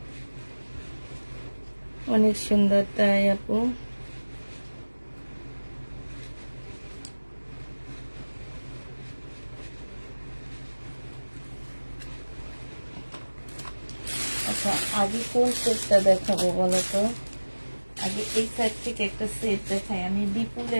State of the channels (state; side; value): inverted; both; correlation -1.00